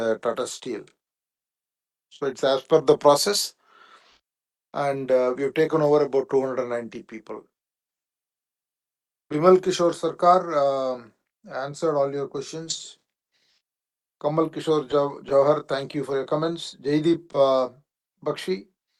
Steel. So it's as per the process. And we have taken over about 290 people. Bimal Kishore Sarkar answered all your questions. Kamal Kishore Jawhar, thank you for your comments. Jaideep Bakshi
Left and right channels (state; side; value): identical; both; correlation 1.00